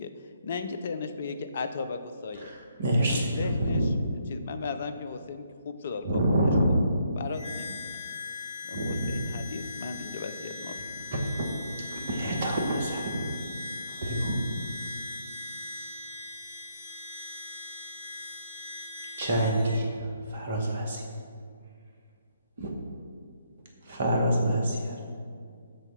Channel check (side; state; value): both; inverted; correlation -0.73